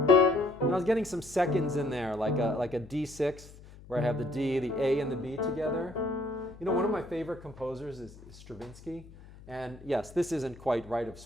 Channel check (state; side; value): noise; left; hum, 19 dB below the sound